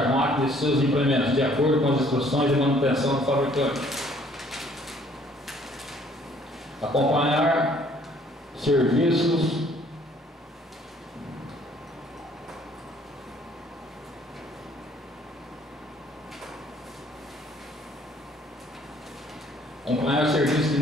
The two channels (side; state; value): both; normal; correlation 0.60